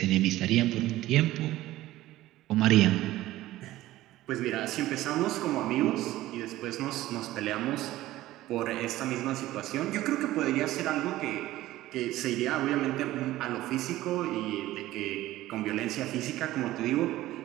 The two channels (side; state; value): left; quieter; 15.9 dB